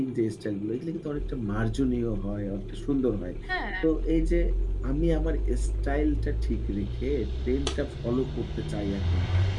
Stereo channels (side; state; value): both; identical; correlation 1.00